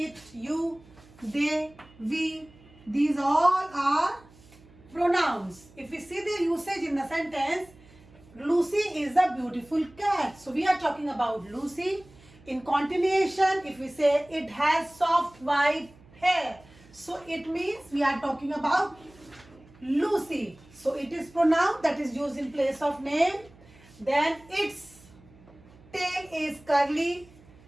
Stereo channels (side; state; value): right; noise; hum, 25 dB below the sound